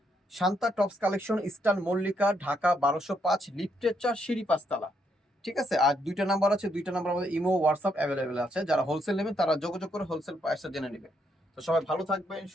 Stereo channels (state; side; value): normal; both; correlation 0.75